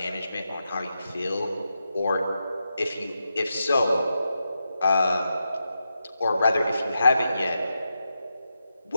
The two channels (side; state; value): both; inverted; correlation -0.87